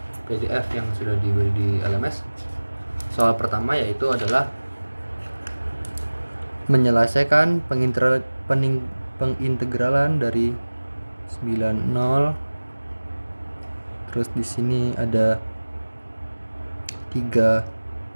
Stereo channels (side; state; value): both; inverted; correlation -1.00